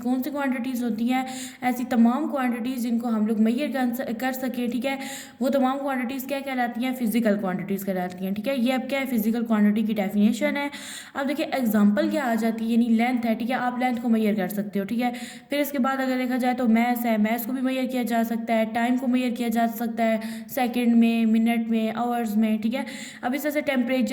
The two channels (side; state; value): both; identical; correlation 1.00